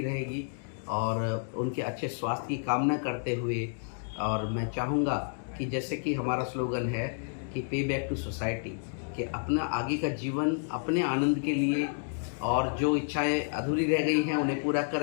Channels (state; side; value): silent; right; digital silence